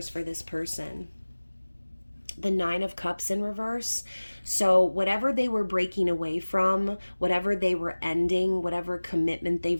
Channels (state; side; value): inverted; both; correlation -1.00